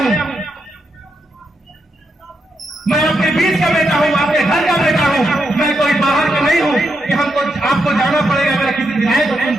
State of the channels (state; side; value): normal; both; correlation 0.82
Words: मैं आपके बीच का बेटा हूं, आपके घर का बेटा हूं, मैं कोई बाहर का नहीं हूं कि हमको आपको जाना पड़ेगा। मेरा किसी विधायक को